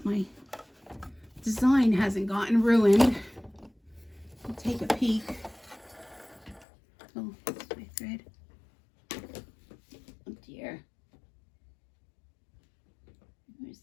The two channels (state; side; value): drops out; right; at 6.7 s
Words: my design hasn't gotten ruined. I'll take a peek. Oh, that's my thread. Oh dear. Where's